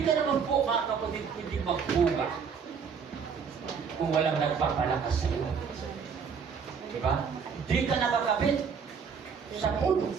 ka naman po, mga kapatid, hindi magbunga kung walang nagpapalakas sa iyo. Diba? Hindi ka nakakabit sa puno.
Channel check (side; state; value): left; quieter; 6.3 dB